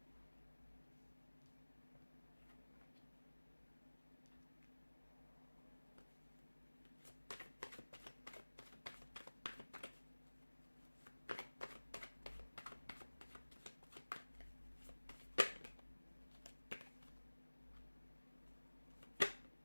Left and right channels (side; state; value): both; inverted; correlation -1.00